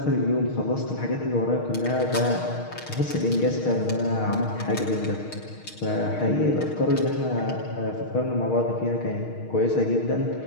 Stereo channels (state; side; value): late; right; 6.4 ms